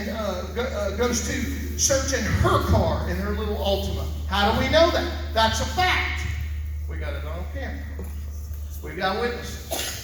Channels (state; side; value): identical; both; correlation 1.00